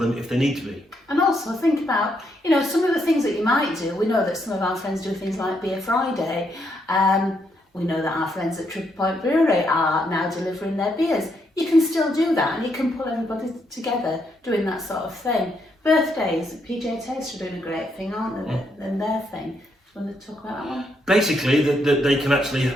if they need to be. And also think about, you know, some of the things that you might do. We know that some of our friends do things like Beer Friday. We know that our friends at Triple Point Brewery are now delivering their beers. You can still do that, and you can pull everybody together doing that sort of thing. Birthdays, PJ Taste are doing a great thing, aren't they? And their thing. Do you want to talk about that one? Basically, that they can actually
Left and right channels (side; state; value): both; normal; correlation 0.77